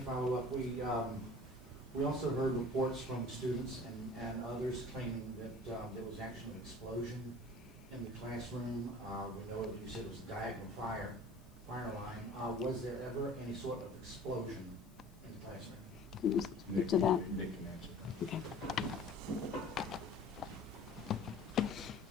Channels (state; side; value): noise; left; hiss, 29 dB below the sound